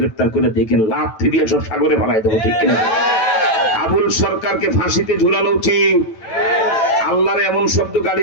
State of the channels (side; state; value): right; late; 9.1 ms